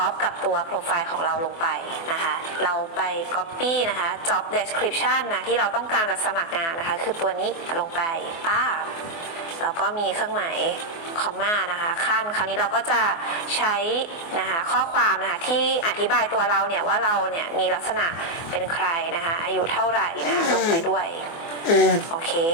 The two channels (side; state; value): right; late; 24 ms